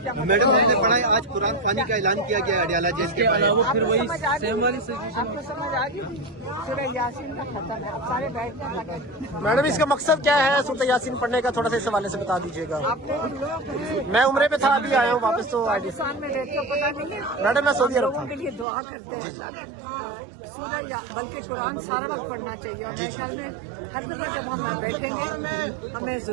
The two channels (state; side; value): drops out; left; at 18.7 s